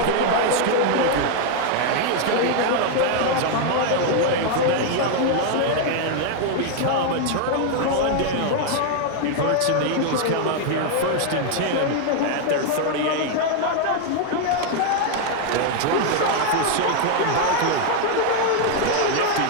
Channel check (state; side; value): different; both; correlation 0.00